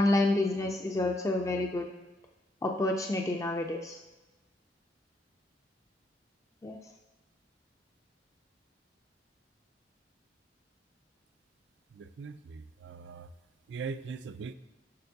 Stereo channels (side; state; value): both; normal; correlation 0.74